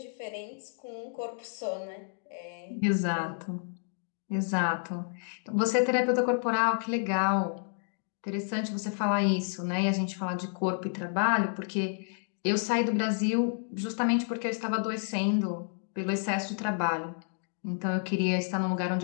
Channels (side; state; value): right; silent; 58 dB below the other